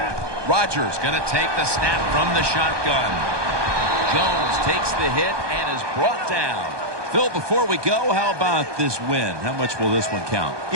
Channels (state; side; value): late; left; 1.2 ms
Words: Rodgers going to take the snap from the shotgun. Jones takes the hit and is brought down. Phil, before we go, how about this win? How much will this one count?